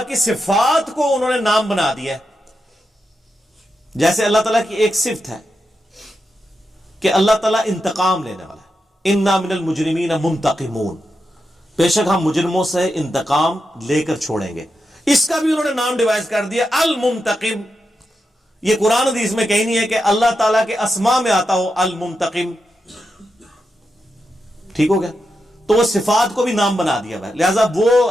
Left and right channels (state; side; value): normal; both; correlation 0.87